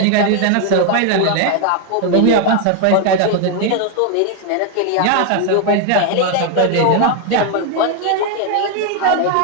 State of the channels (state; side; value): different; both; correlation 0.00